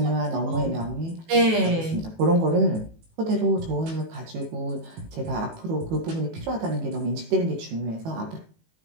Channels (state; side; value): late; left; 18 ms